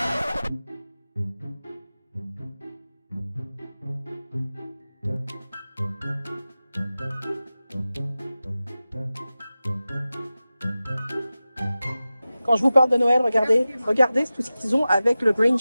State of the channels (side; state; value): both; inverted; correlation -0.95